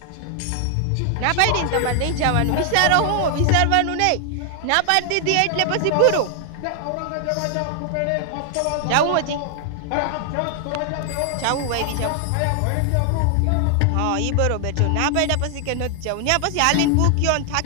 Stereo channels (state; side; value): different; both; correlation 0.00